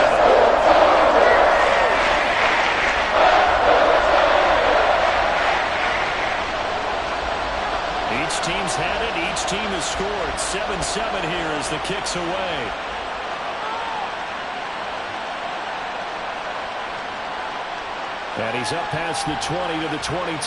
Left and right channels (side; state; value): both; identical; correlation 1.00